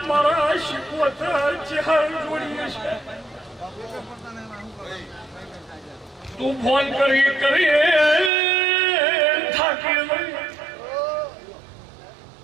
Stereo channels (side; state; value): left; drops out; at 8.3 s